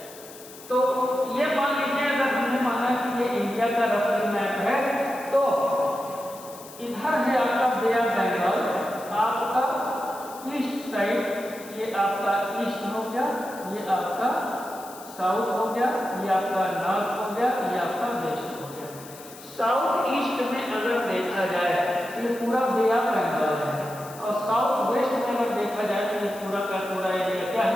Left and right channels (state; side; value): noise; left; hiss, 18 dB below the sound